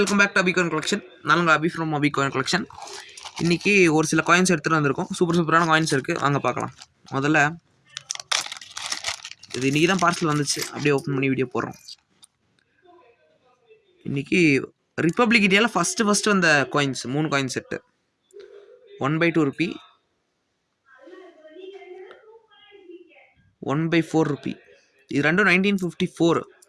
பேக் டு அபிகாயின் கலெக்ஷன். நாங்கள் அபி ஃப்ரம் அபிகாயின் கலெக்ஷன். இன்றைக்கி ஒரு சில காயின்ஸ் எடுத்துகிட்டு வந்திருக்கோம். சூப்பரான காயின்ஸ் இருக்குது, வாங்க பார்க்கலாம். முதல்ல இது இன்றைக்கி தான் பார்சல் வந்துச்சு, அப்படியே ஓப்பன் பண்ணி வீடியோ போடுறோம். இன்றைக்கி ரிப்பப்ளிக் இந்தியாவில் ஃபஸ்ட்டு வந்த coins 3 coin set. 1/2 Ruby, 1/4 Ruby. இது ரெண்டும் 1954.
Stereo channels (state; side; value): identical; both; correlation 1.00